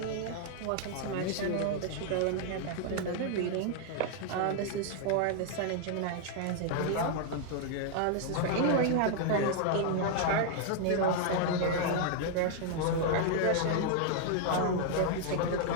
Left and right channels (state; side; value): different; both; correlation -0.01